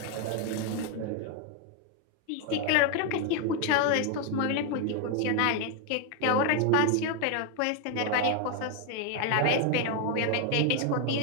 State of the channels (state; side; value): different; both; correlation 0.01